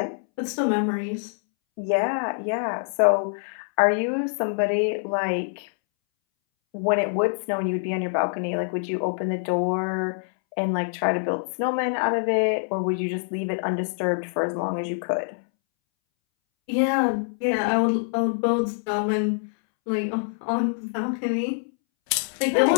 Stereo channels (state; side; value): silent; right; 62 dB below the other